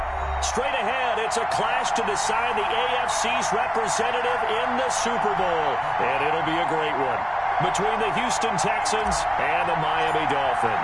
Straight ahead, it's a clash to decide the AFC's representative in the Super Bowl. And it'll be a great one between the Houston Texans and the Miami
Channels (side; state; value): both; identical; correlation 1.00